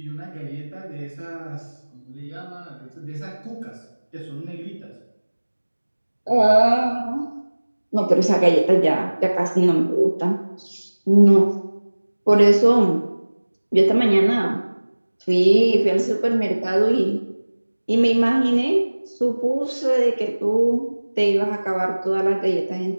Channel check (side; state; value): both; inverted; correlation -1.00